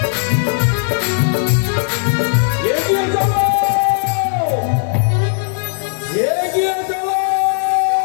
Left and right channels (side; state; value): right; silent; 67 dB below the other